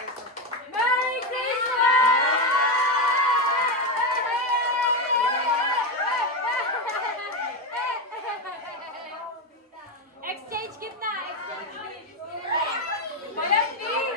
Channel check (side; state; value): both; normal; correlation 0.11